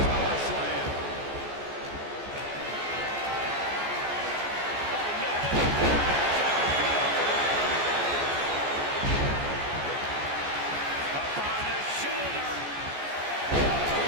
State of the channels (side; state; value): left; late; 14 ms